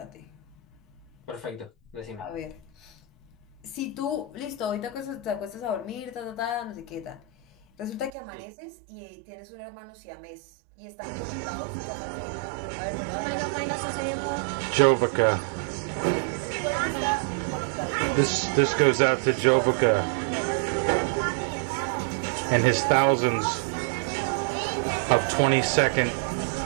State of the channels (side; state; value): left; drops out; at 8.1 s